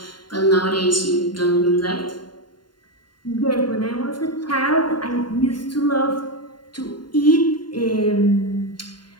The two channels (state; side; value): late; right; 0.71 ms